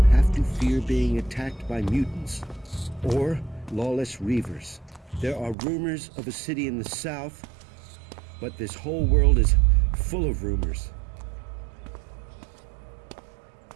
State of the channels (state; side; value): drops out; left; at 5.6 s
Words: have to fear being attacked by mutants or lawless reavers. There are rumors of a city in the south, but this whole world is full of rumors.